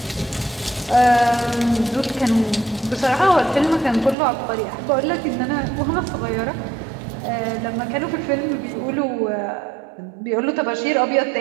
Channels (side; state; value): left; drops out; at 4.2 s